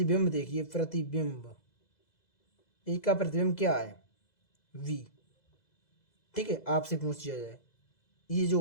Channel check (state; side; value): late; right; 2.0 ms